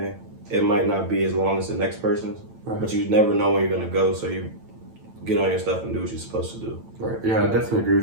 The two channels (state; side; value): late; left; 9.0 ms